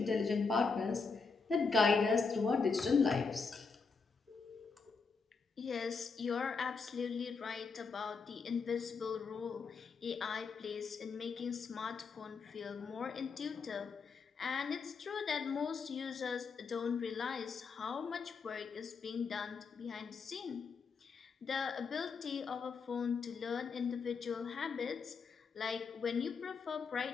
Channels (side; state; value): right; quieter; 5.0 dB